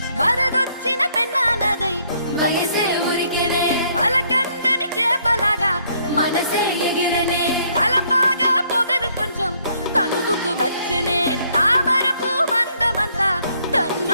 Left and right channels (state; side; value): inverted; both; correlation -0.68